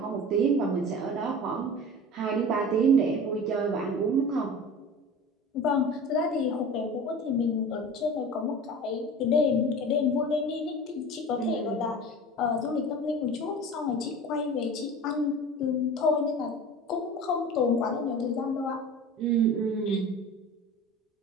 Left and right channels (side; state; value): both; normal; correlation 0.36